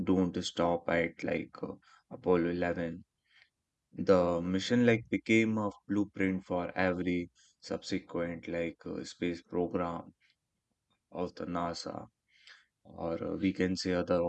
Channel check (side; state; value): both; identical; correlation 1.00